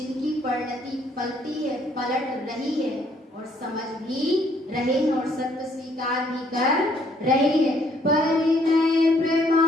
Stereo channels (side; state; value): both; normal; correlation 0.66